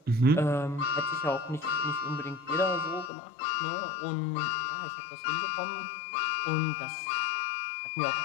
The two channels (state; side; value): drops out; right; at 3.1 s